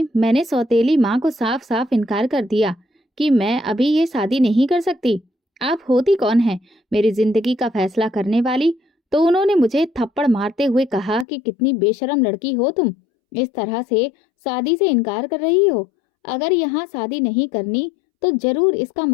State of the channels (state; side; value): drops out; right; at 11.2 s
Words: मैंने सौतेली माँ को साफ साफ इनकार कर दिया कि मैं अभी ये शादी नहीं कर सकती। आप होती कौन है मेरी जिंदगी का फैसला करने वाली? तो उन्होंने मुझे थप्पड़ मारते हुए कहा कि कितनी बेशरम लड़की हो तुम, इस तरह से शादी से इनकार कर रही हो। अगर यहाँ शादी नहीं करनी तो जरूर इसका